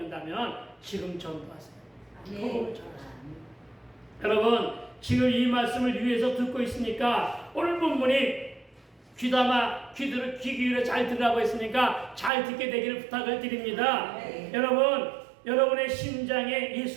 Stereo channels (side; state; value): left; drops out; at 12.3 s